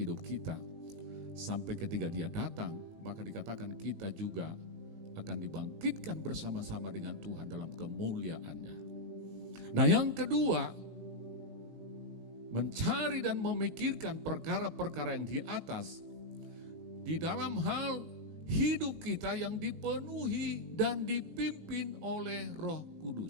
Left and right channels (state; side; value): late; left; 19 ms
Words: kita. Sampai ketika Dia datang, maka dikatakan kita juga akan dibangkitkan bersama-sama dengan Tuhan dalam kemuliaan-Nya. Nah, yang kedua, mencari dan memikirkan perkara-perkara yang di atas di dalam hal hidup kita yang dipenuhi dan dipimpin oleh Roh